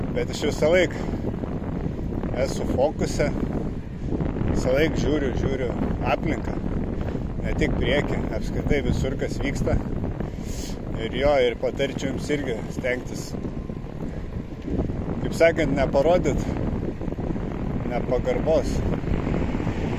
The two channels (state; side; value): identical; both; correlation 1.00